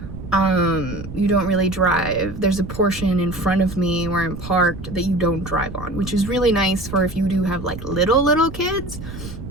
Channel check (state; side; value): noise; right; rumble, 12 dB below the sound